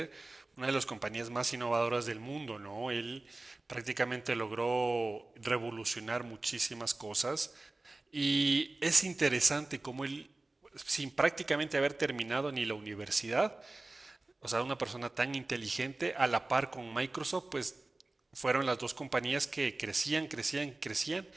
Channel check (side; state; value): left; quieter; 3.1 dB